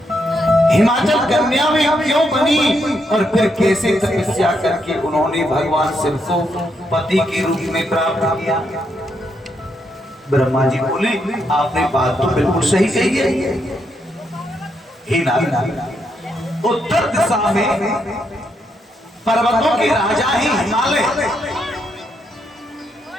हिमाचल कन्या में क्यों बनी और फिर कैसे तपस्या करके उन्होंने भगवान शिव को पति के रूप में प्राप्त किया? ब्रह्मा जी बोले आपने बात तो बिल्कुल सही कही है। हे नारद, उत्तर दिशा में पर्वतों के राजा ही हिमालय,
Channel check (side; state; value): both; normal; correlation 0.79